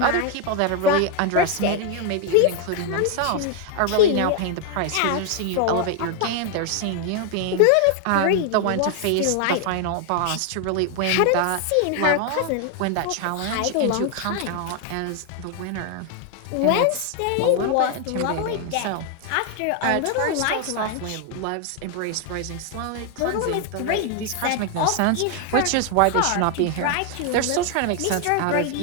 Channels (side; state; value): both; different; correlation 0.00